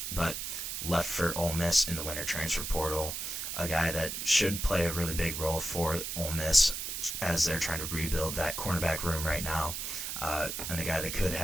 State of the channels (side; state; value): right; noise; hiss, 4 dB below the sound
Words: but left for Ole Miss in the winter transfer portal. A guy that should play a really big role for Ole Miss as they're trying to rebuild that cornerback room right now, and a guy that could